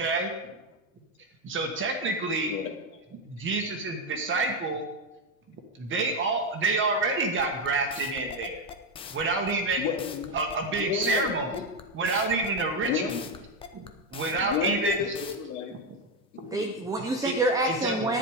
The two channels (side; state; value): both; normal; correlation 0.08